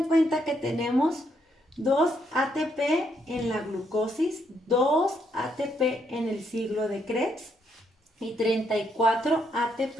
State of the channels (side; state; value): both; normal; correlation 0.75